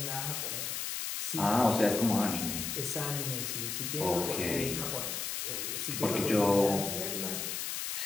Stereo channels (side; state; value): left; noise; hiss, 3 dB below the sound